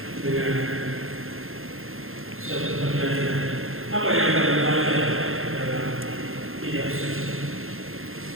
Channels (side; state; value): left; late; 0.61 ms